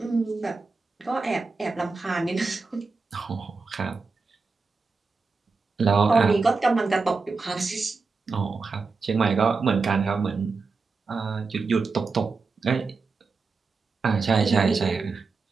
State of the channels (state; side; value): quieter; left; 4.3 dB